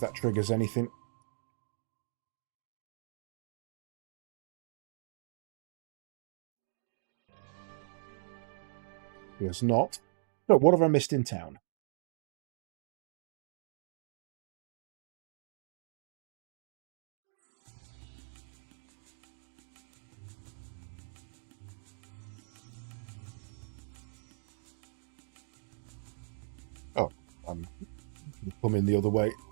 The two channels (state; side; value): silent; left; digital silence